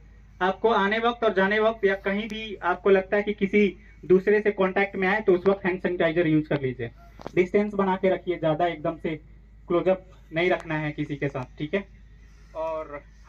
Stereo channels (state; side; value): identical; both; correlation 1.00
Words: आपको आने वक्त और जाने वक्त या कहीं भी आपको लगता है कि किसी दूसरे से कांटेक्ट में आए, तो उस वक्त हैंड सैनिटाइजर यूज कर लीजिए। डिस्टेंस बना के रखिए, ज्यादा एकदम से क्लोजअप नहीं रखना है किसी के साथ, ठीक है। और